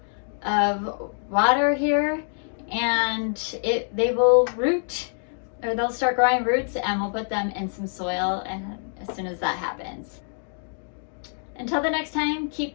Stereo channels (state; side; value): silent; right; 61 dB below the other